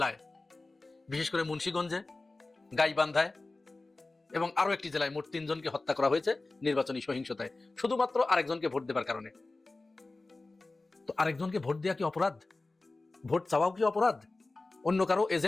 বিশেষ করে মুন্সিগঞ্জে, গাইবান্ধায় এবং আরো একটি জেলায় মোট 3 জনকে হত্যা করা হয়েছে নির্বাচনী সহিংসতায়, শুধুমাত্র আরেকজনকে ভোট দেবার কারণে। তো আরেকজনকে ভোট দেওয়া কি অপরাধ? ভোট চাওয়াও কি অপরাধ? অন্য কারো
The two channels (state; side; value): quieter; right; 3.2 dB